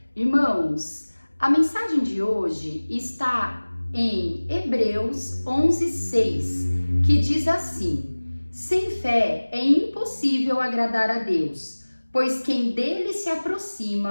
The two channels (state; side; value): inverted; both; correlation -1.00